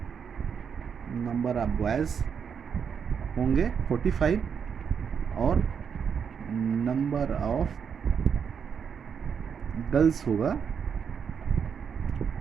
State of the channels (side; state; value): left; quieter; 6.9 dB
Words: 45 और नंबर ऑफ गर्ल्स होगा